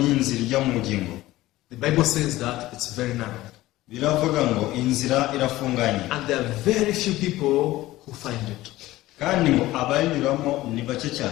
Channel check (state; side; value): quieter; right; 16.9 dB